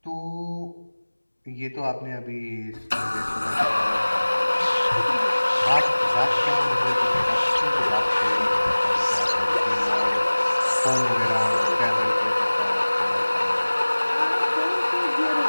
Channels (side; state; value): both; inverted; correlation -1.00